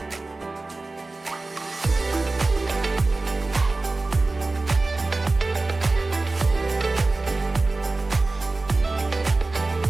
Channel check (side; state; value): left; quieter; 3.3 dB